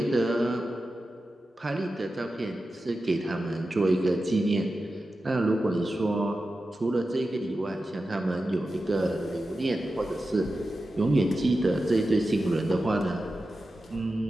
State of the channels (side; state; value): both; normal; correlation 0.92